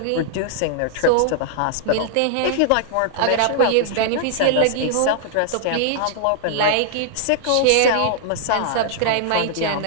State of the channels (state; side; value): different; both; correlation -0.01